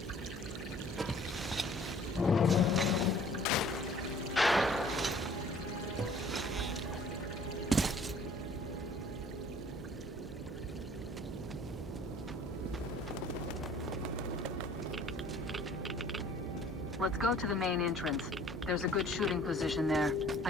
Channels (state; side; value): normal; both; correlation 0.53